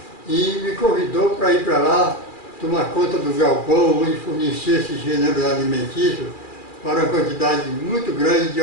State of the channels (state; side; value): late; right; 2.4 ms